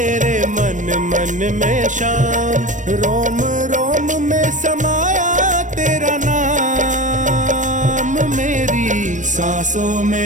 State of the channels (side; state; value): left; late; 0.37 ms